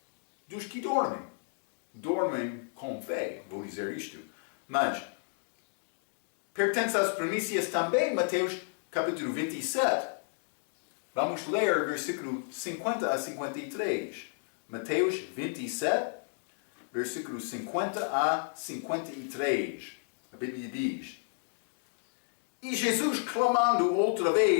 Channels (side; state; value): right; silent; 56 dB below the other